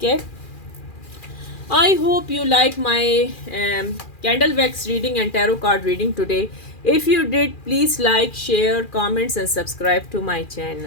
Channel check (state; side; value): late; right; 2.4 ms